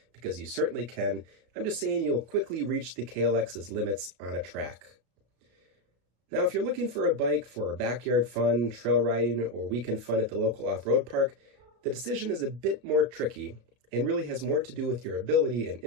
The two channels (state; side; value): late; left; 33 ms